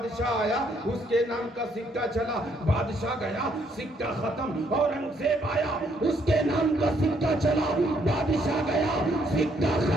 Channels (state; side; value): normal; both; correlation 0.70